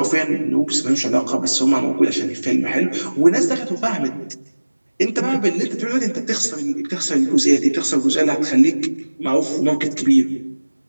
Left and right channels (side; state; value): both; inverted; correlation -1.00